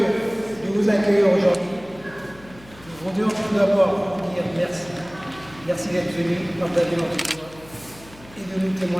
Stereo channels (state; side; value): noise; left; hum, 22 dB below the sound